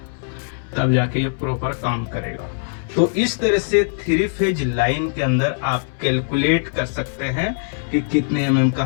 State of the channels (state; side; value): silent; right; 65 dB below the other